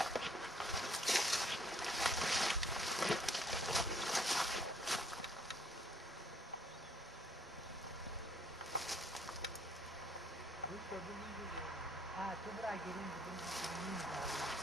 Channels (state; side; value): normal; both; correlation 0.65